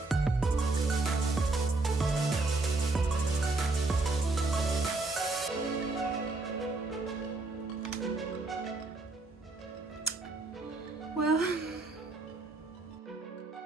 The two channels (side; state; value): left; quieter; 3.2 dB